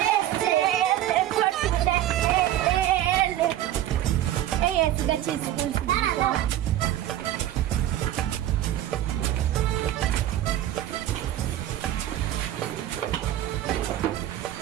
এই এসে গেছি স্কুল।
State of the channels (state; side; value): quieter; left; 12.8 dB